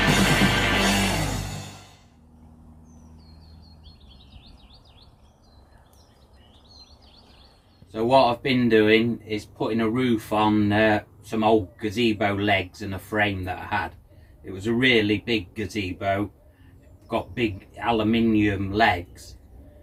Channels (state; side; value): identical; both; correlation 1.00